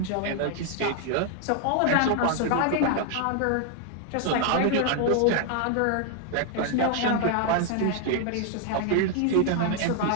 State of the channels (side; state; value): both; different; correlation 0.00